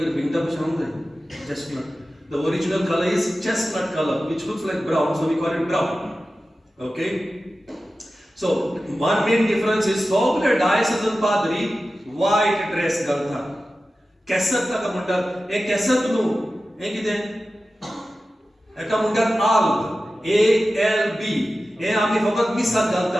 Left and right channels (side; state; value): both; normal; correlation 0.94